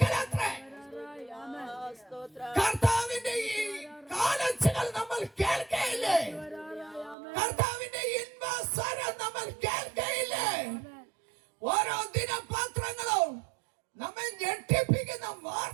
കർത്താവിന്റെ ഈ കാലച്ചുകൾ നമ്മൾ കേൾക്കയില്ലേ? കർത്താവിന്റെ ഇൻവസ്വരം നമ്മൾ കേൾക്കയില്ലേ? ഓരോ ദിനപത്രങ്ങളും നമ്മെ ഞെട്ടിപ്പിക്കുന്ന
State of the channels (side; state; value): left; drops out; at 7.2 s